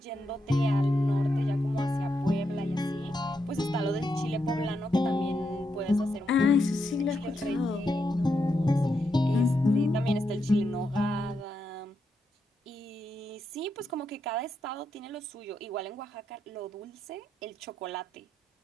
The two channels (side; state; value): both; normal; correlation 0.83